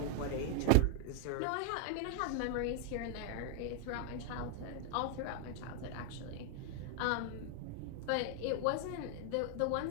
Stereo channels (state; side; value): different; both; correlation 0.00